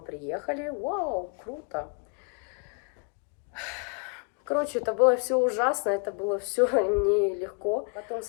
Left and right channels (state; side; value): quieter; right; 35.2 dB